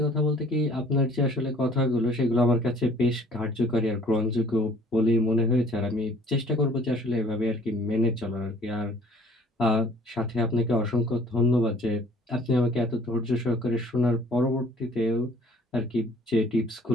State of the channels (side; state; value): both; normal; correlation 0.55